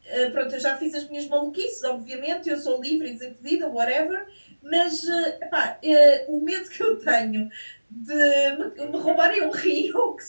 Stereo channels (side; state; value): both; inverted; correlation -1.00